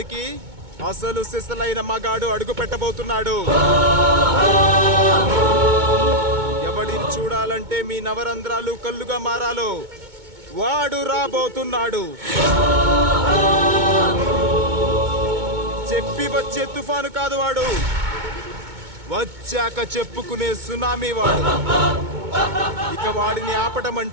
అసలు సిసలైన మగాడు అడుగు పెట్టబోతున్నాడు. ఎవడిని చూడాలంటే మీ నవరంధ్రాలు కళ్ళుగా మారాలో వాడు రాబోతున్నాడు. చెప్పి వచ్చే తుఫాను కాదు వాడు, వచ్చాక చెప్పుకునే సునామీ వాడు. ఇక వాడిని ఆపటం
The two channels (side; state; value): left; late; 2.2 ms